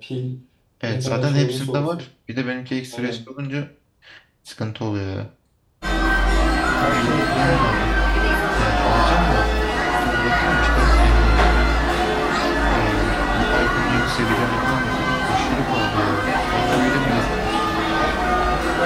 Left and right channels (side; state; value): both; identical; correlation 1.00